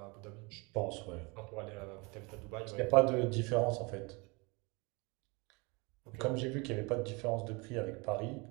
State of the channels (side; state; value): left; quieter; 28.2 dB